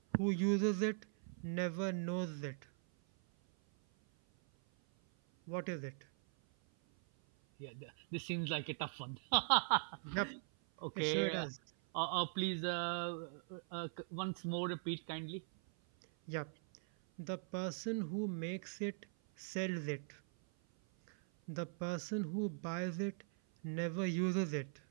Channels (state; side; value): silent; left; 51 dB below the other